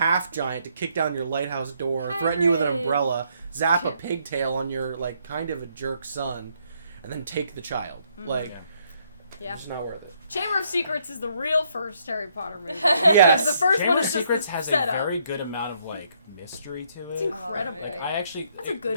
giant to kick down your lighthouse door, threaten you with an Hagrid. umbrella, zap a pigtail on your like kind of a jerk son, and then take the child. Like, Yeah. Yeah. it's not worth it. Chamber of Secrets is the real first Harry Potter movie. Yes. Because the first Chamber one of is just Secrets the has a setup. very good amount of like mystery to it. It's incredible. Oh, Like, I actually That's a good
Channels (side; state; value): both; inverted; correlation -0.71